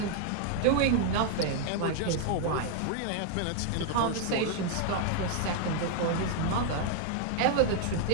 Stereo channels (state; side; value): different; both; correlation 0.00